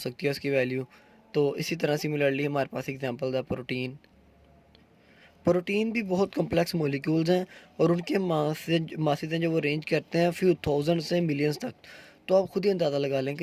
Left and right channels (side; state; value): both; identical; correlation 1.00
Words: है उसकी वैल्यू। तो इसी तरह सिमिलरली हमारे पास एग्जांपल है प्रोटीन। प्रोटीन भी बहुत कम्प्लेक्स मॉलिक्यूल्स हैं और उनके मासेज हैं जो वो रेंज करते हैं फ्यू थाउजेंड से मिलियंस तक। तो आप खुद ही अंदाज़ा लगा लें